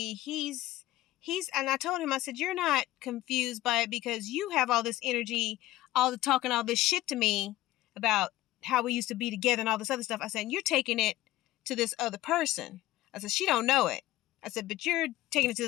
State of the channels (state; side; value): quieter; right; 16.2 dB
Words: he's, and I told him, I said, you're not confused by it because you have all this energy, all the talking, all this shit to me about how we used to be together and all this other stuff. I said, you're taking it to this other person. I said, she don't know it. I said, but you're taking it to